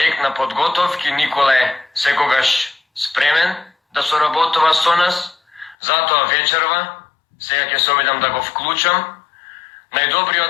на подготовки. Никола е секогаш спремен да соработува со нас. Затоа вечерва, сега ќе се обидам да го вклучам,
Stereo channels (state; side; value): drops out; right; at 5.8 s